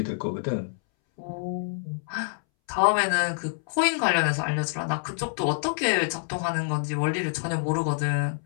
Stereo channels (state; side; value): silent; right; 60 dB below the other